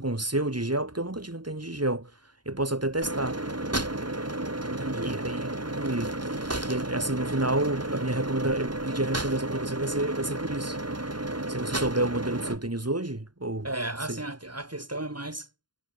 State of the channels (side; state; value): left; late; 0.71 ms